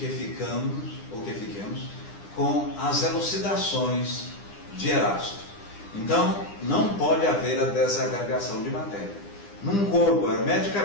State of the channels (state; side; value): late; right; 9.9 ms